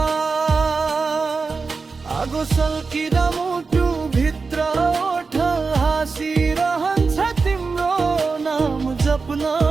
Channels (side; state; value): left; quieter; 4.5 dB